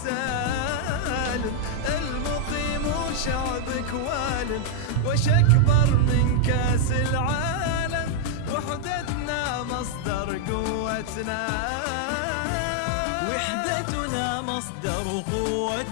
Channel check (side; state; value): both; different; correlation -0.01